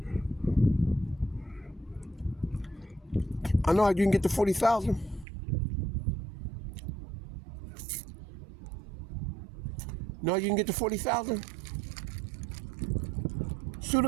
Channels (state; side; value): drops out; left; at 5.2 s